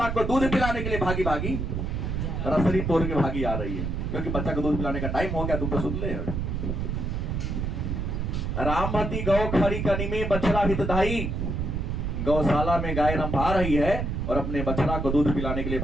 को दूध पिलाने के लिए भागी भागी रसरी तोड़ के भागी आ रही है, क्योंकि बच्चा को दूध पिलाने का टाइम हो गया, तू तो सुन ले। रामवती गौ खरी कनी में बछड़ा हितधाई, गौशाला में गाय रंभा रही है और अपने बछड़ा को दूध पिलाने के लिए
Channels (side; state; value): right; noise; rumble, 2 dB below the sound